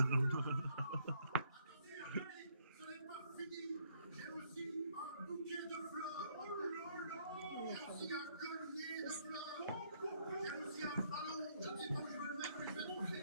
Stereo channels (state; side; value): inverted; both; correlation -0.68